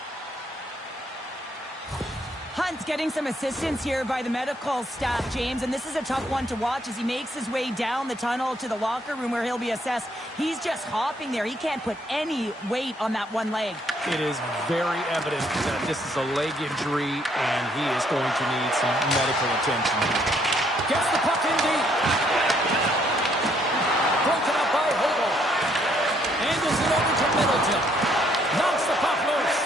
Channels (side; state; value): both; normal; correlation 0.69